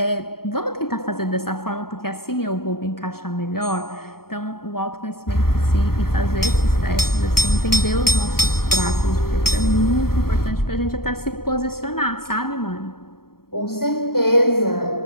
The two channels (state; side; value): late; right; 0.94 ms